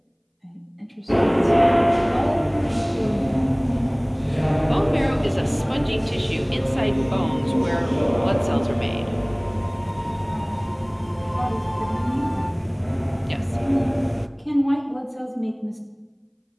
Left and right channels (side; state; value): both; identical; correlation 1.00